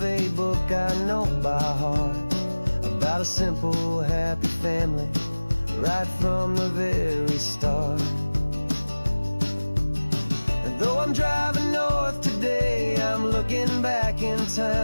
a book I know by heart, about a simple, happy family right from the very start. And though I'm driving north today, I'm looking back in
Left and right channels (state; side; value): inverted; both; correlation -1.00